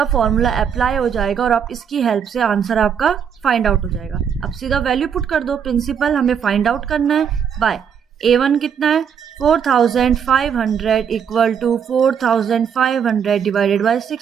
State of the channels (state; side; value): quieter; left; 7.6 dB